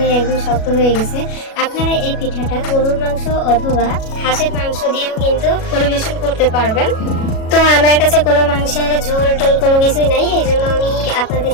একদম শক্ত হয়ে গেছে। আপনারা এই পিঠাটা গরুর মাংস অথবা হাঁসের মাংস দিয়েও কিন্তু পরিবেশন করতে পারবেন। তো আমার কাছে কোনো মাংসের ঝোল টোল কোনো কিছুই নাই, এই জন্য আমি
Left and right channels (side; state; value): right; late; 37 ms